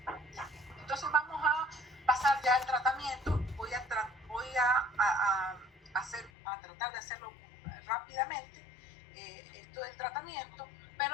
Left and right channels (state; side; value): drops out; right; at 6.3 s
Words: Entonces vamos a pasar ya al tratamiento. Voy a tratar de hacerlo rápidamente, esto del tratamiento,